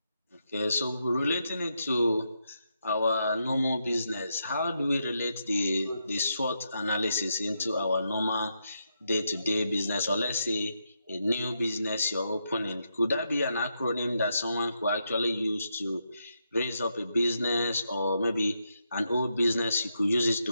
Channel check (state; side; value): inverted; both; correlation -0.82